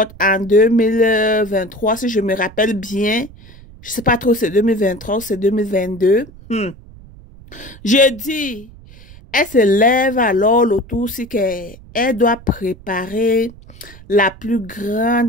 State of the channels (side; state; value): right; noise; rumble, 20 dB below the sound